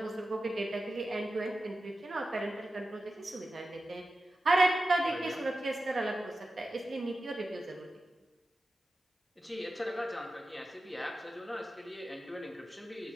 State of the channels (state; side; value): normal; both; correlation 0.93